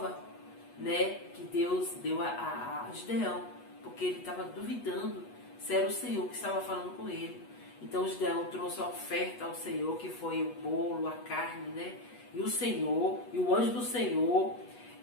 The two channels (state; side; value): late; right; 8.2 ms